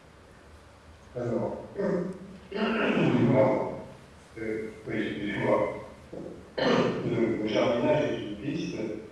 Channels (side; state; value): both; identical; correlation 1.00